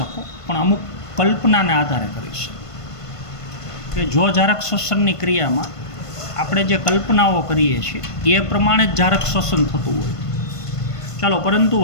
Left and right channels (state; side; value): late; right; 1.5 ms